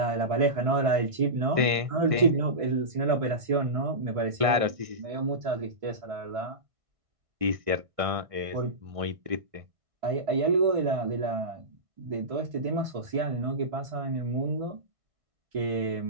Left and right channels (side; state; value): left; late; 1.6 ms